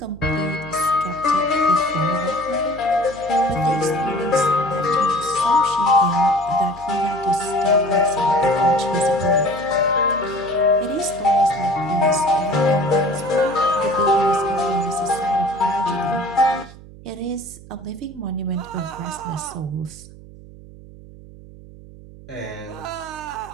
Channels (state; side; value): noise; right; hum, 19 dB below the sound